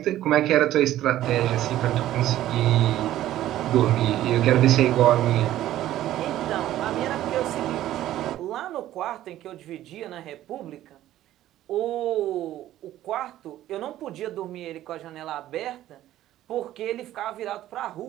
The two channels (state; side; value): quieter; left; 13.5 dB